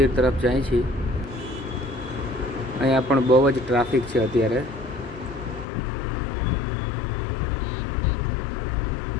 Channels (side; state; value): right; drops out; at 5.7 s